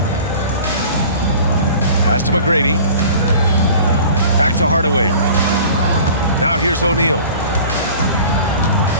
Pass to McGrady. Back to Hardaway. Now here's O'Neal.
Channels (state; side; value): inverted; both; correlation -0.44